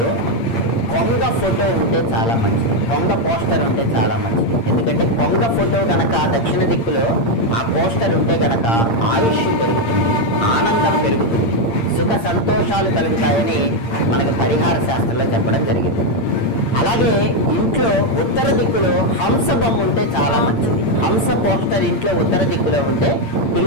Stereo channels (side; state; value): right; late; 8.7 ms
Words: కొంగ ఫోటో ఉంటే చాలా మంచిది, కొంగ పోస్టర్ ఉంటే చాలా మంచిది. ఎందుకంటే కొంగ ఫోటో గనక దక్షిణ దిక్కులో ఆ పోస్టర్ ఉంటే గనక ఆయుష్ పెరుగుతుంది, ఆనందం పెరుగుతుంది, సుఖ సంతోషాలు కలుగుతాయని మనకు పరిహార శాస్త్రంలో చెప్పడం జరిగింది. అలాగే ఇంట్లో ఉత్తర దిక్కులో హంస బొమ్మ ఉంటే చాలా మంచిది. హంస పోస్టర్ ఇంట్లో ఉత్తర దిక్కులో ఉంటే